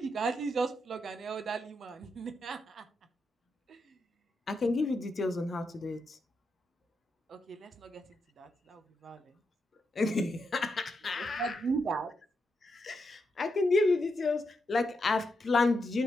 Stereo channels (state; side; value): normal; both; correlation 0.84